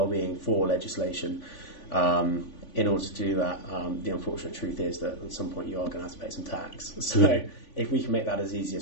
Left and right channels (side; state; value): right; late; 3.5 ms